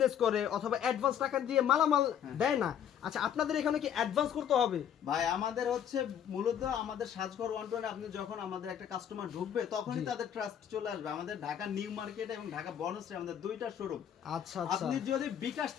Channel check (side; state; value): right; quieter; 9.2 dB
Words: করে অথবা অ্যাডভান্স টাকা দিয়ে মালামাল দেয় না, আচ্ছা আপনাদের এখানে কি অ্যাডভান্স করতে হবে? ভাই আমাদের হচ্ছে মূলত আমাদের সাজঘর 120 আপনি যখন আমাদের একটা কাস্টমার ঢুকবে তখনই জি। তাদের ট্রাস্ট চলে আসবে। আমাদের ঢাকা নিউ মার্কেট এবং ঢাকা বনশ্রী আমাদের দুইটা শোরুম। আচ্ছা আচ্ছা আপনি যদি বিকাশ